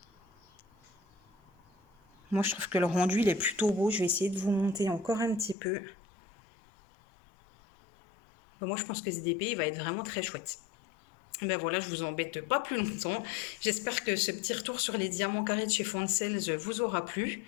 Moi, je trouve que le rendu, il est plutôt beau. Je vais essayer de vous monter encore un petit peu. Bah, moi, je pense que ce DP, il va être vraiment très chouette. Ben voilà, je vous embête pas plus longtemps. J'espère que ce petit retour sur les diamants carrés de chez Foncels vous aura plu.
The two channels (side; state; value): right; drops out; at 5.6 s